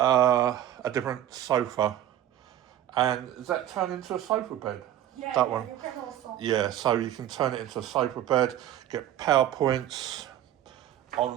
different sofa. And is that turned into a sofa bed? Yeah, that one. You can also. Yeah, so you can turn it into a sofa bed, get PowerPoints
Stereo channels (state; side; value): quieter; left; 11.7 dB